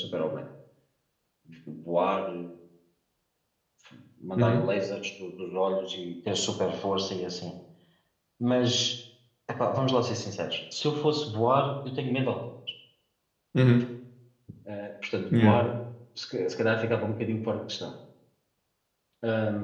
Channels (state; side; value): identical; both; correlation 1.00